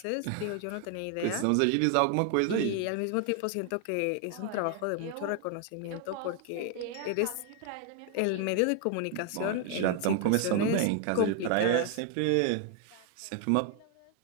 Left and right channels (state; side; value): different; both; correlation 0.00